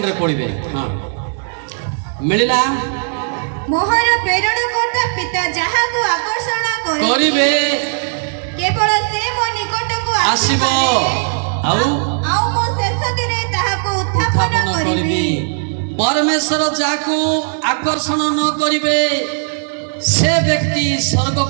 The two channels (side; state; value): left; silent; digital silence